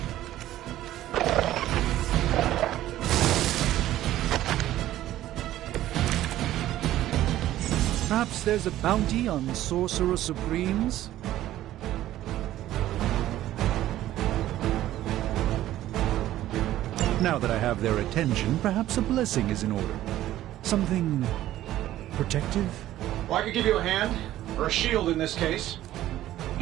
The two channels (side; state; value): left; quieter; 13.9 dB